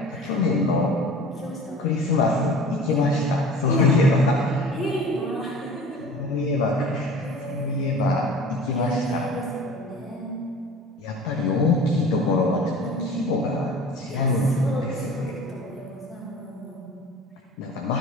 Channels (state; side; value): normal; both; correlation 0.42